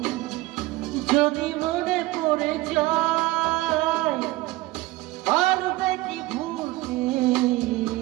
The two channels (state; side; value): quieter; left; 19.0 dB